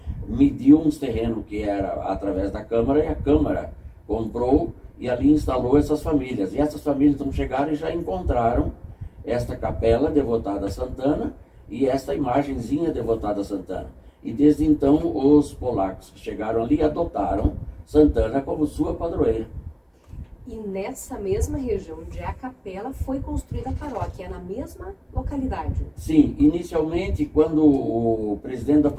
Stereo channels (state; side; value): identical; both; correlation 1.00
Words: mediu uns terrenos que era através da Câmara, e a Câmara comprou e ali instalou essas famílias. E essas famílias então chegaram e já encontraram esta capela devotada a Santana e esta imagenzinha devotada a Santana. E desde então os polacos que chegaram ali adotaram Santana como sua padroeira. E nessa mesma região onde é a capela foi construída a paróquia, é na mesma localidade? Sim, inicialmente quando o presidente da